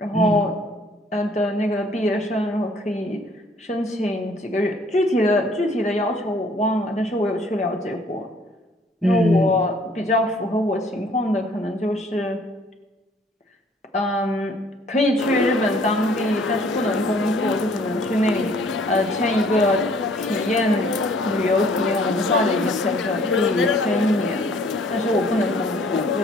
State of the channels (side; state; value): both; normal; correlation 0.58